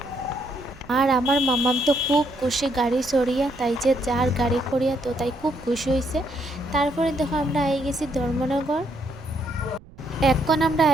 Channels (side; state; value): right; noise; rumble, 22 dB below the sound